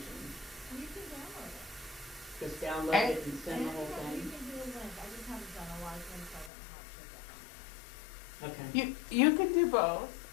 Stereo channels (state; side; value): drops out; right; at 6.5 s